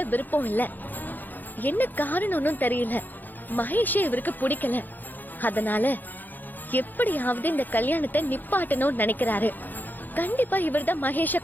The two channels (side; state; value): right; late; 0.087 ms